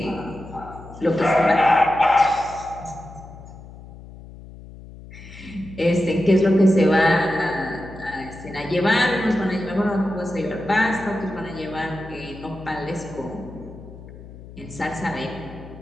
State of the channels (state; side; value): noise; left; hum, 17 dB below the sound